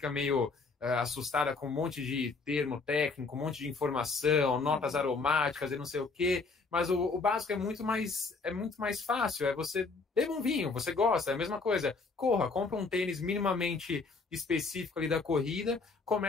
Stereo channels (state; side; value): quieter; right; 4.1 dB